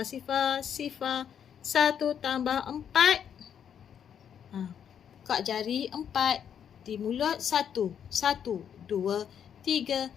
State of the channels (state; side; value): quieter; right; 8.4 dB